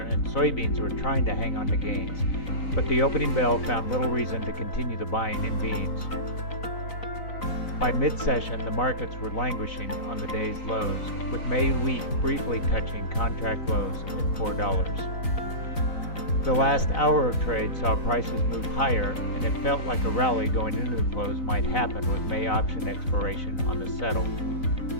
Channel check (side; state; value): right; late; 4.0 ms